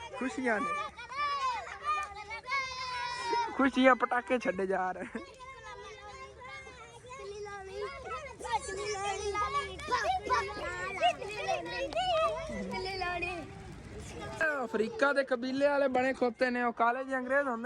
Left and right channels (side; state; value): both; identical; correlation 1.00